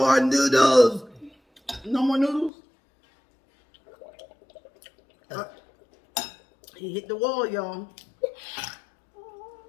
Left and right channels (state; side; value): drops out; right; at 2.5 s